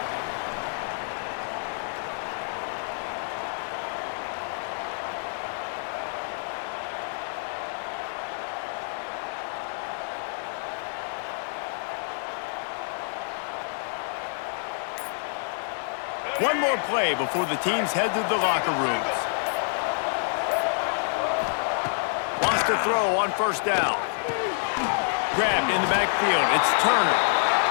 One more play before the teams head to the locker rooms. Wants to throw on first down. Grabbed in the backfield. It's Turner.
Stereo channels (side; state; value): right; silent; 60 dB below the other